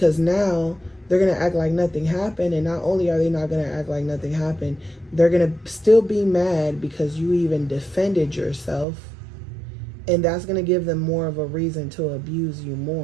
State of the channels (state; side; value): drops out; left; at 8.8 s